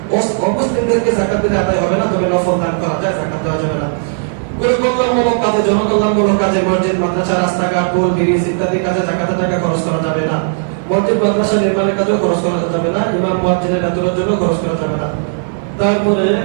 অমুসলিমদেরকে জাকাত দিলে আদায় হবে না, তবে নফল দান করা যায়, জাকাত দেওয়া যাবে না। কল্যাণমূলক কাজে, জনকল্যাণমূলক কাজে, মসজিদ, মাদ্রাসা, রাস্তাঘাট, পোল, ব্রিজ ইত্যাদি কাজে জাকাতের টাকা খরচ করা যাবে না। মসজিদ, মাদ্রাসা নির্মাণের কাজেও খরচ করা যাবে না, ইমাম মুয়াজ্জিনের বেতনের জন্য খরচ করা যাবে না। তারপরে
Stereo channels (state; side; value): silent; left; digital silence